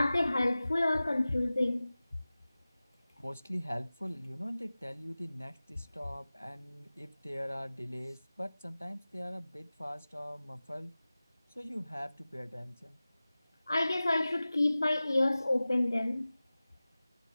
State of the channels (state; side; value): inverted; both; correlation -0.97